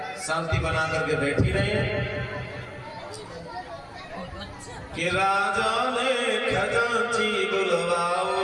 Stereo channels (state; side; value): identical; both; correlation 1.00